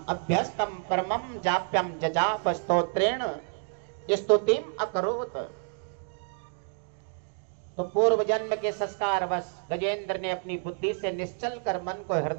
अभ्यस्तम परमम जाप्यम जजाप स्तोत्रेण स्तुतिम अकरोत। तो पूर्व जन्म के संस्कार वश गजेंद्र ने अपनी बुद्धि से निश्चल कर मन को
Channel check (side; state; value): left; silent; 59 dB below the other